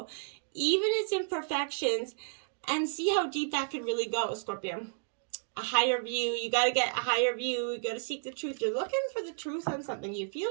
even its imperfections, and see how deep that could really go, Scorpio. A higher view. You got to get a higher view. You got to seek the truth. You're looking for the truth on something. You feel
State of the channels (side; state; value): left; silent; digital silence